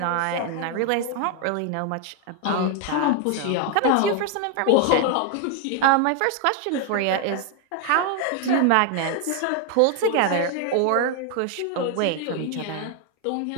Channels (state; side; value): different; both; correlation 0.01